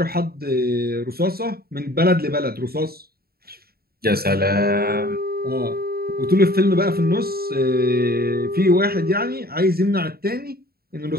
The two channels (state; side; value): late; left; 0.45 ms